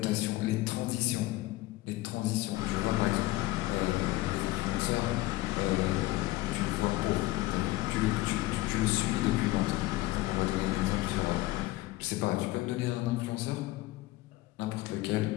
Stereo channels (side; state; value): right; quieter; 18.2 dB